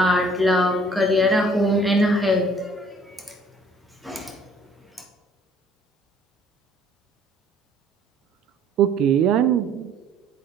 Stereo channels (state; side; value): normal; both; correlation 0.57